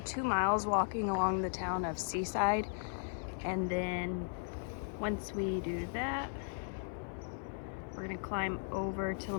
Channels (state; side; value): silent; right; 53 dB below the other